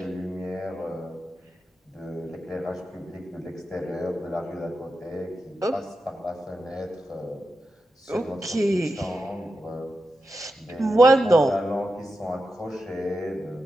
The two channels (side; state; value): both; normal; correlation 0.89